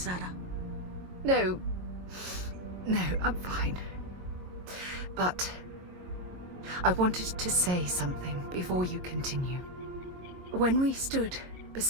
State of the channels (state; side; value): late; left; 22 ms